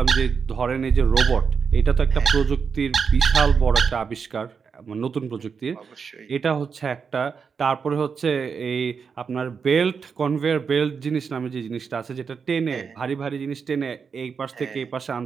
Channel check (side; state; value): left; quieter; 5.9 dB